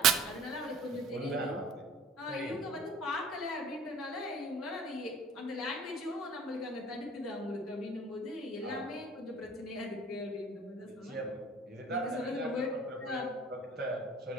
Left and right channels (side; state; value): both; normal; correlation 0.47